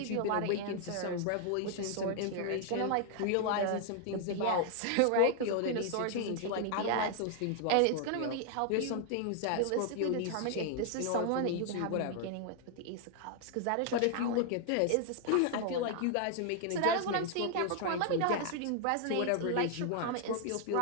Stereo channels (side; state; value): both; different; correlation 0.00